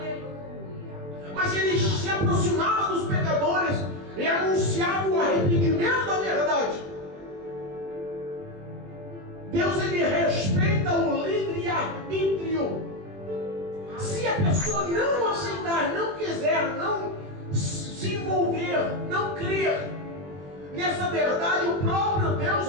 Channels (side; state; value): left; late; 21 ms